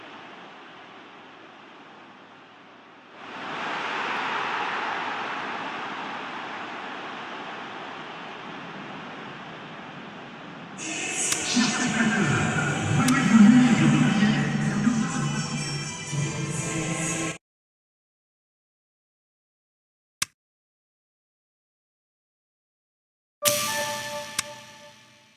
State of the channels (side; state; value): both; identical; correlation 1.00